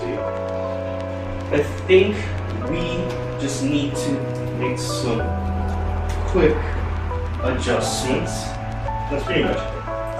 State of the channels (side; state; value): both; identical; correlation 1.00